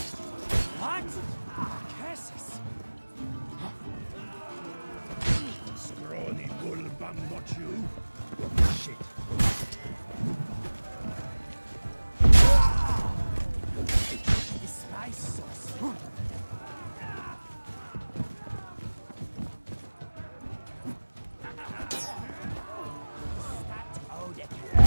What? Jesus! Scrawny bull bum, not you. Shit. The spice sauce.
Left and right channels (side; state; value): both; inverted; correlation -1.00